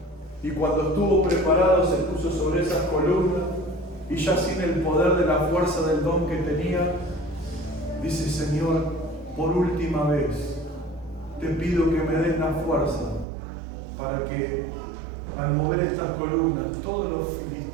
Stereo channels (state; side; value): drops out; left; at 13.2 s